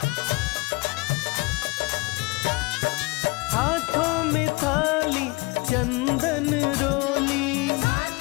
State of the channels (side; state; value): right; quieter; 25.8 dB